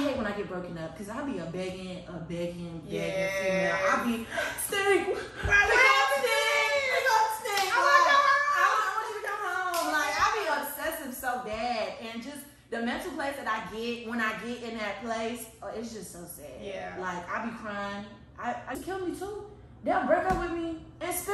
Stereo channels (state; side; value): identical; both; correlation 1.00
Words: hate when I get broken up because I be a begging female. I be stink. I want you to come home. Like, I be obsessive so bad, and just the mental place that I get when I get in that place, it's just so sad. Yeah. Like, I be crying. I kill me too. They'll break up with me and